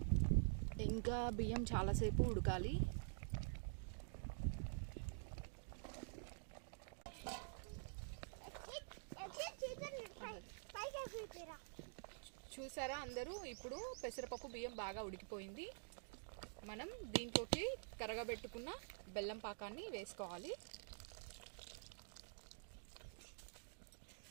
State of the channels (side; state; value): left; silent; digital silence